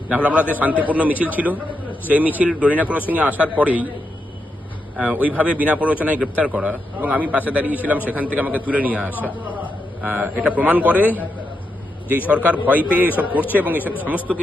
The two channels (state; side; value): normal; both; correlation 0.84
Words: নাহলে আমাদের শান্তিপূর্ণ মিছিল ছিল, সেই মিছিল ডরিনা ক্রসিংয়ে আসার পরেই ওইভাবে বিনা প্ররোচনায় গ্রেপ্তার করা এবং আমি পাশে দাঁড়িয়েছিলাম, সেখান থেকে আমাকে তুলে নিয়ে আসা, এটা প্রমাণ করে যে সরকার ভয় পেয়ে এসব করছে এবং এসব সমস্ত